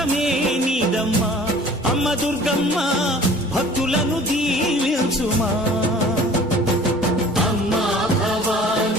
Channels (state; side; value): normal; both; correlation 0.48